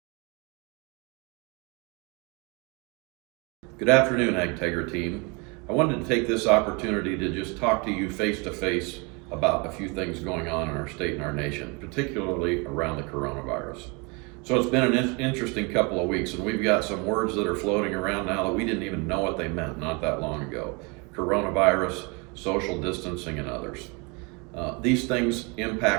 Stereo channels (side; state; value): left; quieter; 30.2 dB